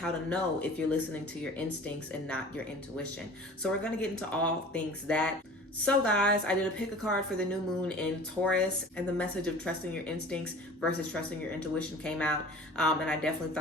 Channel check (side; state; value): both; normal; correlation 0.43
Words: to know if you're listening to your instincts and not your intuition. So we're going to get into all things that. So guys, I did a pick a card for the new moon in Taurus, and the message of trusting your instincts versus trusting your intuition came out. And I definitely